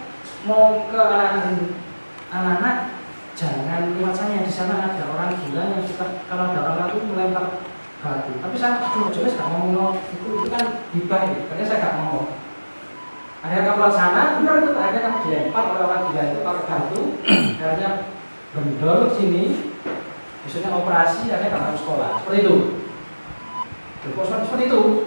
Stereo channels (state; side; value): inverted; both; correlation -1.00